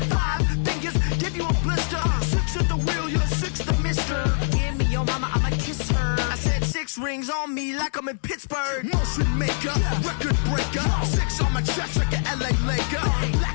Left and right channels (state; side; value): silent; right; digital silence